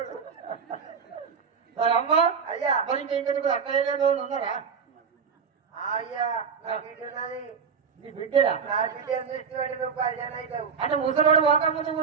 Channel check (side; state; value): left; quieter; 6.2 dB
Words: సరే అమ్మ. అయ్యా మరి ఇంకెందుకు అక్కయ్య లేదు ఉన్నారా? అయ్యా నా బిడ్డది. నీ బిడ్డరా? నా బిడ్డ దృష్టి పెట్టి నువ్వు పరిచయం అవుతావు. అంటే ముసలోడు ఒక ముందు